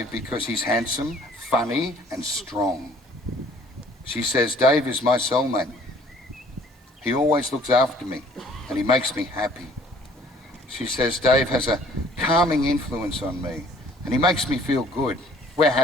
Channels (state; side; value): normal; both; correlation 0.56